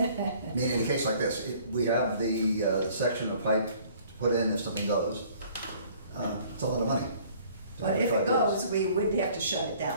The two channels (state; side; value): inverted; both; correlation -0.55